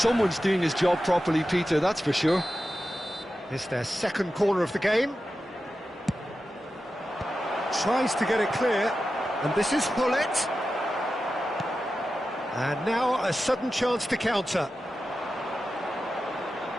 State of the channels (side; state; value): both; normal; correlation 0.92